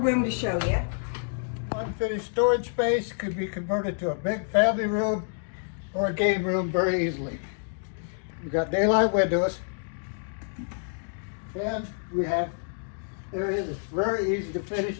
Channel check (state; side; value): silent; right; digital silence